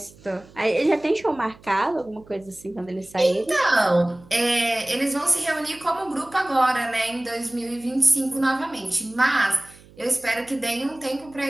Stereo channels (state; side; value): noise; right; hum, 24 dB below the sound